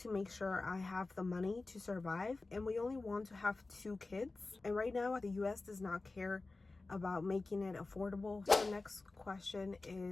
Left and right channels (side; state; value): right; quieter; 3.4 dB